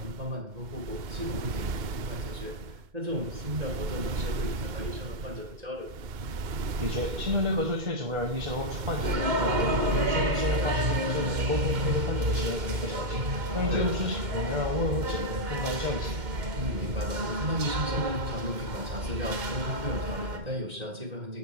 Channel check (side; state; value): left; late; 2.1 ms